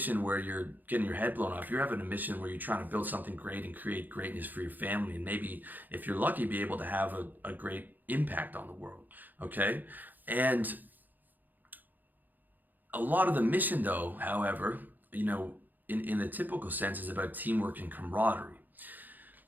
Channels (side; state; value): left; late; 0.086 ms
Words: where you're getting your head blown off, you're having a mission where you're trying to build something great and create greatness for your family, and maybe, if you're lucky, be able to have a great impact on the world. Okay? And a lot of the mission, though, however, in the typical sense, is about teamwork and camaraderie.